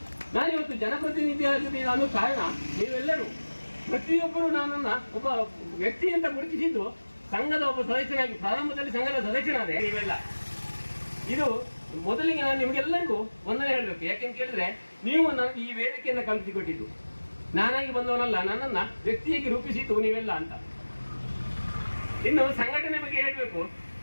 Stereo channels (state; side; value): inverted; both; correlation -1.00